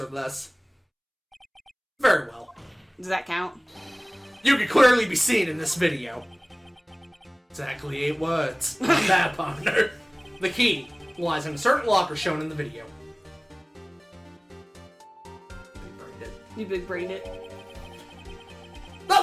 or less? Very well. Does that count? You can clearly be seen in this video. Exactly 8 words. Not bad, partner. The key lies in a certain locker shown in the video. Big-brained it. You big-brained it.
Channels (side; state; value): both; identical; correlation 1.00